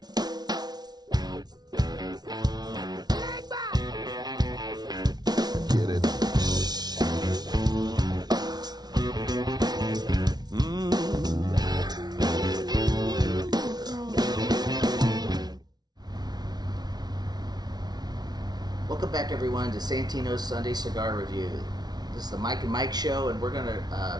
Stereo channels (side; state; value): left; late; 0.19 ms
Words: Get it. Welcome back, everyone, to Santino's Sunday Cigar Review. This is the Mike and Mike Show, and we're going